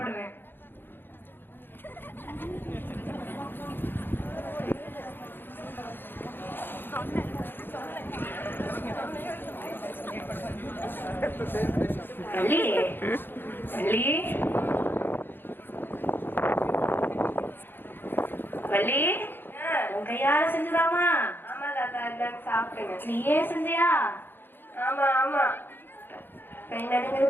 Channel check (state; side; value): late; right; 0.099 ms